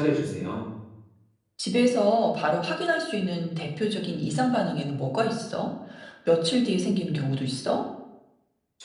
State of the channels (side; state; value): both; identical; correlation 1.00